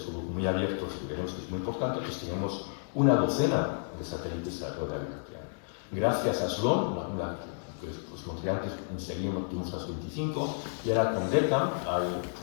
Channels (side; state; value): right; silent; digital silence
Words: muy abiertos, que veremos que es muy importante, pues tenemos una docena de satélites alrededor de la Vía Láctea. Gracias a Sloan, que os mostré antes, enseguida tuvimos las 25, y ahora con DECAM hay